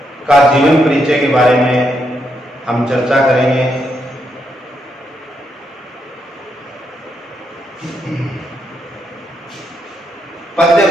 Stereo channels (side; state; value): both; normal; correlation 0.79